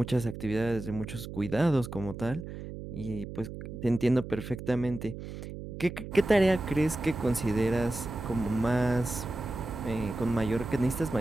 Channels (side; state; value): right; noise; hum, 10 dB below the sound